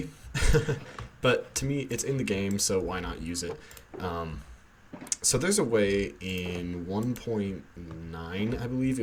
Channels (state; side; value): identical; both; correlation 1.00